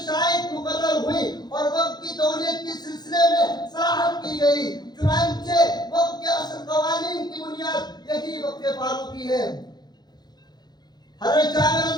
شرائط مقرر ہوئی اور وقف کی تولیت کے سلسلے میں صراحت کی گئی۔ چنانچہ وقف کے اصل قوانین کی بنیاد یہی وقف فاروقی ہے۔ حضرت جابر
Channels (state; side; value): late; right; 0.20 ms